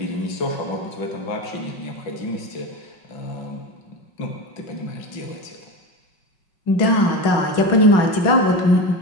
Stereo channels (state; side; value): late; right; 5.5 ms